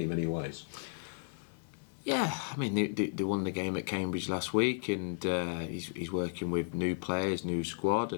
many ways? Yeah, I mean they won the game at Cambridge last week, and he's working with new players, new squad,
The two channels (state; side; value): silent; right; digital silence